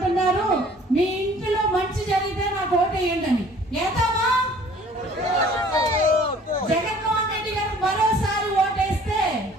మీ ఇంటిలో మంచి జరిగితే నాకు ఓటేయండి అని. ఏతామా? జగన్మోహన్ రెడ్డి గారు మరోసారి ఓటేస్తే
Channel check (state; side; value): normal; both; correlation 0.53